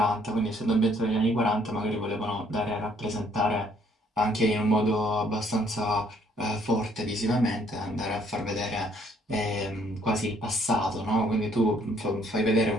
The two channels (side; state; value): both; normal; correlation 0.65